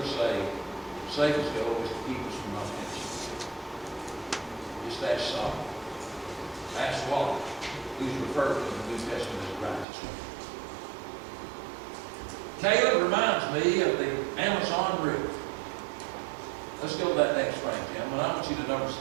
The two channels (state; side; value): drops out; left; at 9.9 s